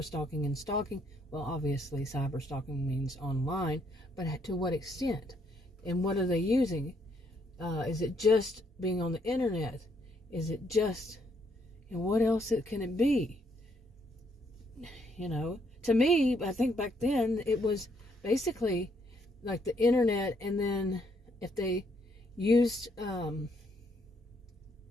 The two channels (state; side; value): normal; both; correlation 0.71